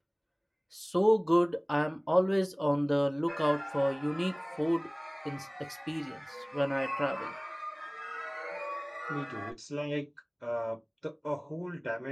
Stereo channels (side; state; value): both; identical; correlation 1.00